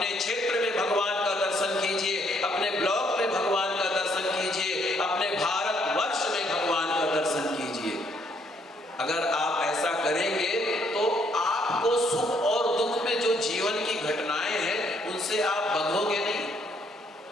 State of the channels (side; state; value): both; normal; correlation 0.69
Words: क्षेत्र में भगवान का दर्शन कीजिए, अपने ब्लॉक में भगवान का दर्शन कीजिए, अपने भारतवर्ष में भगवान का दर्शन कीजिए। अगर आप ऐसा करेंगे तो आपको सुख और दुख में जो जीवन की घटनाएं हैं उनसे आप बंधोगे नहीं।